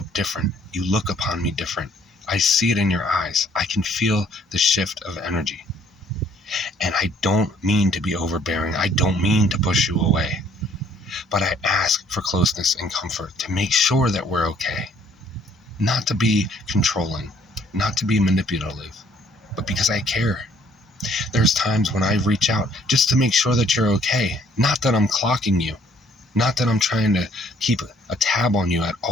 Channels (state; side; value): normal; both; correlation 0.62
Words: different. You look upon me different. I see it in your eyes. I can feel the shift of energy. And I don't mean to be overbearing. I don't mean to push you away. But I ask for closeness and comfort to make sure that we're okay. Not to be controlling, not to be manipulative, but because I care. There's times when I reach out just to make sure that you're okay. Not that I'm clocking you. Not that I'm trying to keep a tab on you at